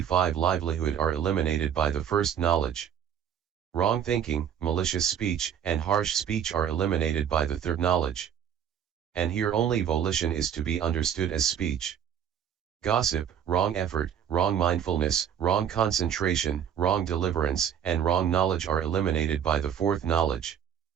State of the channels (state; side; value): quieter; left; 8.8 dB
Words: livelihood are eliminated by the first knowledge. Wrong thinking, malicious speech, and harsh speech are eliminated by the third knowledge. And here only volition is to be understood as speech. Gossip, wrong effort, wrong mindfulness, wrong concentration, wrong deliverance, and wrong knowledge are eliminated by the fourth knowledge.